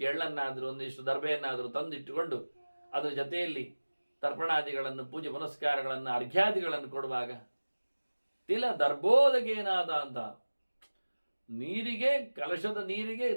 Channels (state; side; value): inverted; both; correlation -1.00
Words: ಎಳ್ಳನ್ನಾದರೂ ಒಂದಿಷ್ಟು ದರ್ಬೆಯನ್ನಾದರೂ ತಂದಿಟ್ಟುಕೊಂಡು ಅದರ ಜೊತೆಯಲ್ಲಿ ತರ್ಪಣಾದಿಗಳನ್ನು, ಪೂಜೆ ಪುನಸ್ಕಾರಗಳನ್ನು, ಅರ್ಘ್ಯಾದಿಗಳನ್ನು ಕೊಡುವಾಗ ತಿಲ ದರ್ಬೋದಗೇನಾದ ಅಂತ ನೀರಿಗೆ, ಕಲಶದ ನೀರಿಗೆ